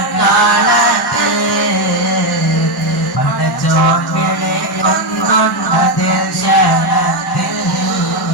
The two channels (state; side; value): normal; both; correlation 0.07